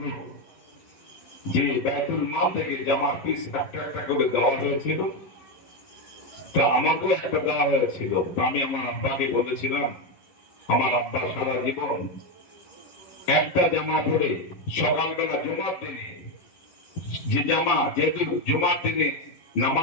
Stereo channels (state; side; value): late; right; 11 ms